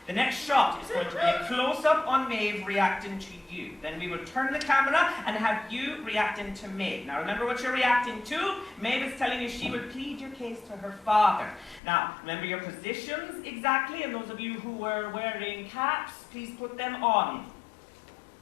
the next shot is going to be a close-up on Maeve reacting to you. Then we will turn the camera and have you reacting to Maeve. Now remember what you're reacting to. Maeve is telling you she will plead your case to her father. Now, remember your positions exactly, and those of you who were wearing caps, please put them on.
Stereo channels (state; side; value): drops out; right; at 11.8 s